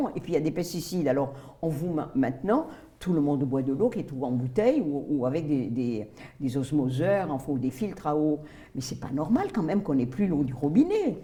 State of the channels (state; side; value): identical; both; correlation 1.00